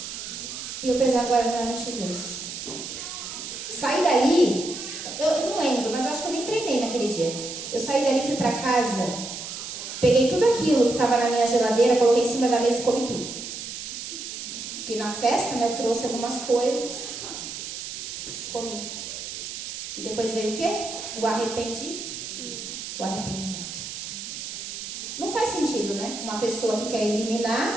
e eu precisava agora eliminar 22. Saí dali, eu não lembro, mas eu acho que eu nem treinei naquele dia. Eu saí dali, fui para casa, peguei tudo aquilo que estava na minha geladeira, coloquei em cima da mesa e comi tudo. Porque na festa, né, eu trouxe algumas coisas, comi. E depois veio o quê? O arrependimento. Não faz sentido, né? Uma pessoa que quer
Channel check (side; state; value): right; noise; hiss, 8 dB below the sound